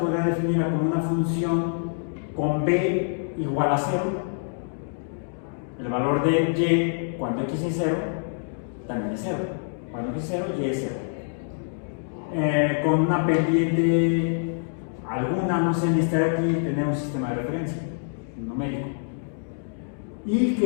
definirla como una función con b igual a 0. El valor de y cuando x es 0 también es 0. Cuando x es 0, y es 0. Con una pendiente alguna, no sé, necesitar aquí tener un sistema de referencia numérico. Y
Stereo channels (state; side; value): silent; right; digital silence